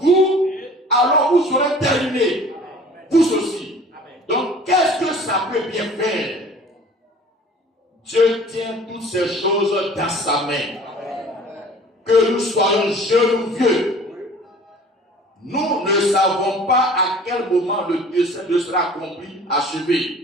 alors vous serez terminé. Vous aussi. Donc, qu'est-ce que ça peut bien faire? Dieu tient toutes ces choses dans sa main. Que nous soyons jeunes ou vieux, nous ne savons pas à quel moment le dessein sera accompli,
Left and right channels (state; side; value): normal; both; correlation 0.47